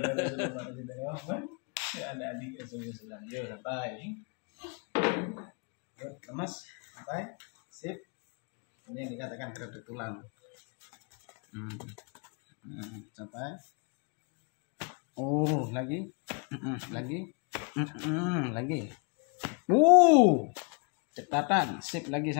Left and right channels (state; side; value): quieter; right; 35.7 dB